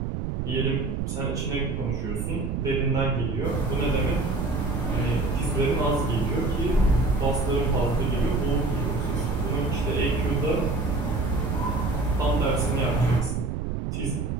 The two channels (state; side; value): noise; right; rumble, 2 dB below the sound